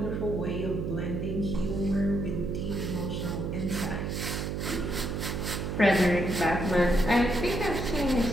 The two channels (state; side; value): noise; right; hum, 2 dB below the sound